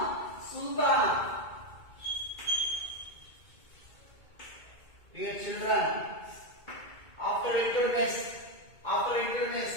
Sultana. Dear children, after Iltutmish,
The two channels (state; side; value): late; right; 2.2 ms